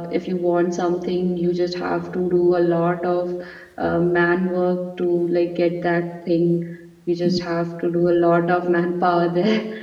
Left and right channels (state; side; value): identical; both; correlation 1.00